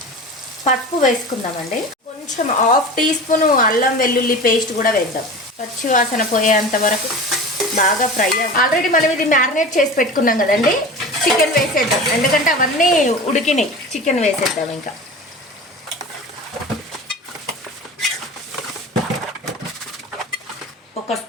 పసుపు వేసుకుందామండి. కొంచెం 1/2 టీ స్పూన్ అల్లం వెల్లుల్లి పేస్ట్ కూడా వేద్దాం. పచ్చి వాసన పోయేంత వరకు బాగా ఫ్రై అవ్వాలి. ఆల్రెడీ మనం ఇది మ్యారినేట్ చేసి పెట్టుకున్నాం కదండి. చికెన్ వేసేద్దాం, ఎందుకంటే అవన్నీ ఉడికినాయి. చికెన్ వేసేద్దాం. ఇంకా ఒక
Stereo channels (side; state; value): both; normal; correlation 0.34